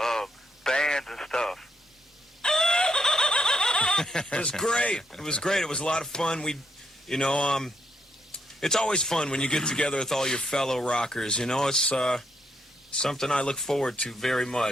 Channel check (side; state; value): both; normal; correlation 0.76